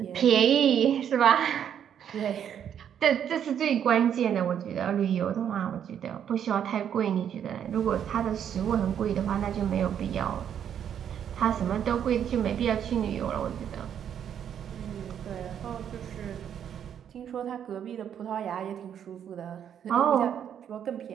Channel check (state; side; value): quieter; left; 9.0 dB